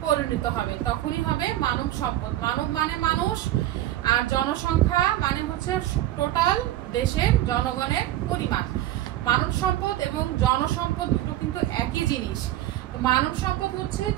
পরিণত হবে, তখনই হবে মানব সম্পদ। মানব মানে মানুষ, আর জনসংখ্যা মানে হচ্ছে টোটাল দেশের জনগণের পরিমাণ। মানব সম্পদ এবং জনসম্পদ দুটো কিন্তু একই জিনিস। মানব সম্পদ হচ্ছে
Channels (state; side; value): quieter; left; 13.8 dB